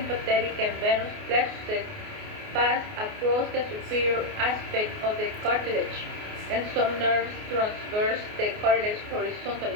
and venous plexuses pass across the superior aspect of the cartilage, and some nerves transverse the cartilage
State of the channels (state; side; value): late; left; 28 ms